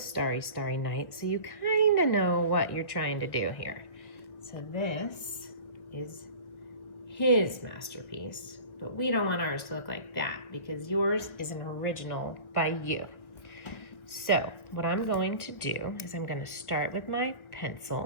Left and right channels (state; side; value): late; right; 1.2 ms